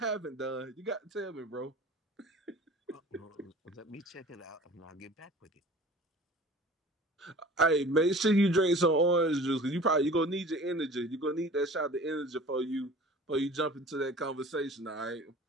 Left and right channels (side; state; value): both; normal; correlation 0.44